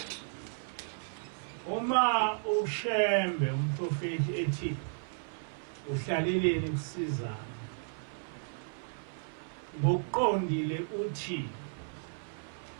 Uma ushembe umprofeti ethi uhlaleleni ukusizana, ngokuqondile uthi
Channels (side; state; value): left; silent; 55 dB below the other